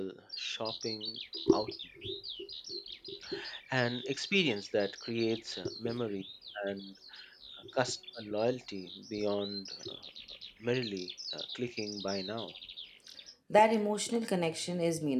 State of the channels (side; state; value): both; identical; correlation 1.00